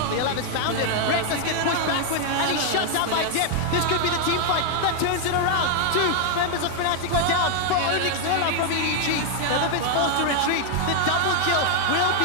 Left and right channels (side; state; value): both; different; correlation 0.00